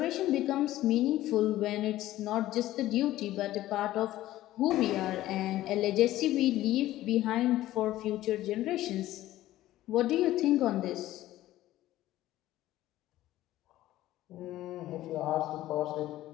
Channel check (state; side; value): quieter; right; 15.0 dB